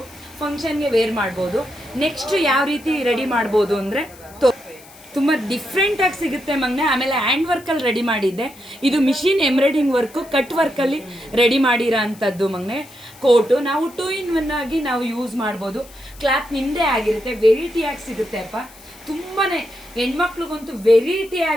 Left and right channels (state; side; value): noise; left; hiss, 22 dB below the sound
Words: ಫಂಕ್ಷನ್ಗೆ ವೇರ್ ಮಾಡ್ಬೋದು. ನೆಕ್ಸ್ಟ್ ಯಾವ ರೀತಿ ರೆಡಿ ಮಾಡ್ಬೋದು ಅಂದರೆ ತುಂಬ ಡಿಫ್ರೆಂಟಾಗಿ ಸಿಗುತ್ತೆ ಮಗನೆ. ಆಮೇಲೆ ಹ್ಯಾಂಡ್ ವರ್ಕಲ್ಲಿ ರೆಡಿ ಮಾಡಿದ್ದೆ. ಇದು ಮಿಷಿನ್ ಎಂಬ್ರಾಯ್ಡಿಂಗ್ ವರ್ಕು, ಕಟ್ ವರ್ಕಲ್ಲಿ ರೆಡಿ ಮಾಡಿರೋ ಅಂಥದ್ದು ಮಗನೆ. ಕೋಟು ನಾವು 2 in 1 ಆಗಿ ನಾವು ಯೂಸ್ ಮಾಡ್ಬೋದು. ಕ್ಲಾತ್ ನಿಮ್ಮದೇ ಆಗಿರುತ್ತೆ, ವೆರೈಟಿಯಾಗಿ ಸಿಗುತ್ತೆ ಅಪ್ಪ. ತುಂಬಾ ಹೆಣ್ಮಕ್ಳಿಗಂತೂ